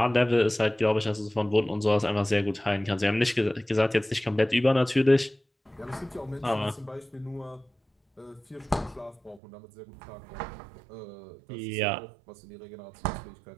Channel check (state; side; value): drops out; left; at 9.4 s